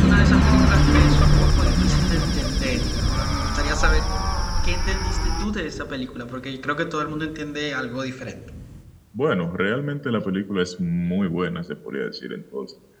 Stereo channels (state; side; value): identical; both; correlation 1.00